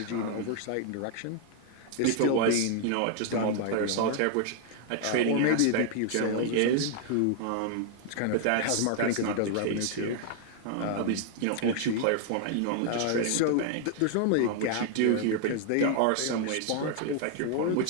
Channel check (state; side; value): different; both; correlation 0.00